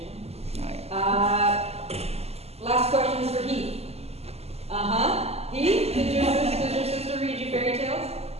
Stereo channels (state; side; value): late; left; 0.30 ms